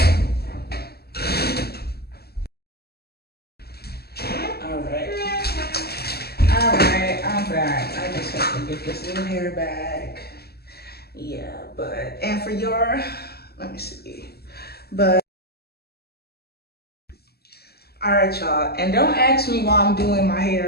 All right, I'm back. I just have to get this little hair back. Yeah, but, and for your, let me see, but All right, y'all, and don't ask me why I'm doing my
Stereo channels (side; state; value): right; late; 0.46 ms